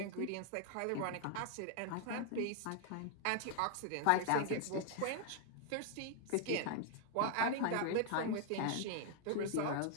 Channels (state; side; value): different; both; correlation 0.00